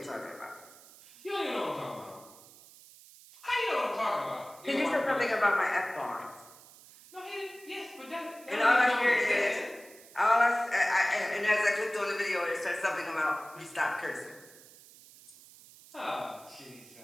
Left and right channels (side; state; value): right; noise; hiss, 22 dB below the sound